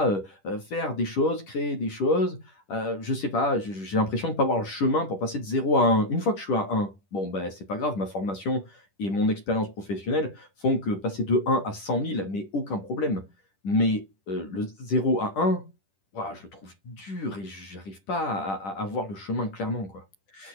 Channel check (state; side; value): late; right; 10 ms